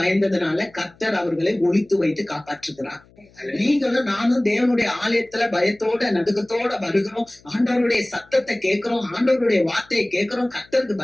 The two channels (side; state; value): left; noise; hum, 29 dB below the sound